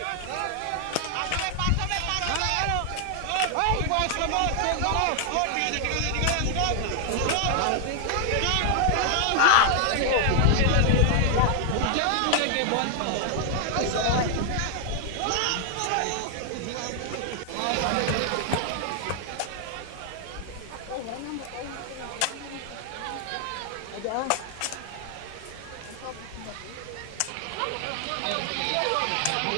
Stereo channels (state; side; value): different; both; correlation 0.00